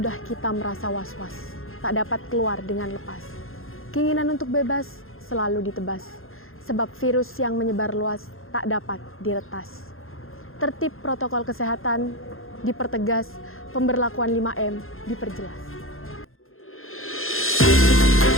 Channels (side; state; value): right; late; 0.61 ms